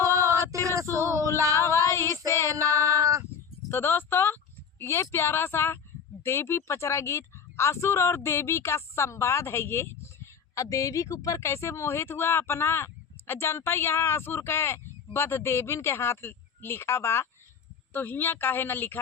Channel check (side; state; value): right; quieter; 6.8 dB